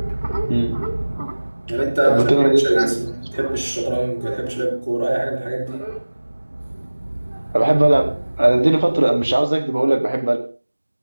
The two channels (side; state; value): both; inverted; correlation -1.00